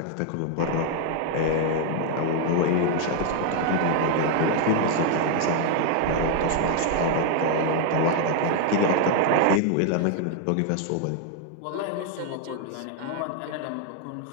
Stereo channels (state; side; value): different; both; correlation 0.00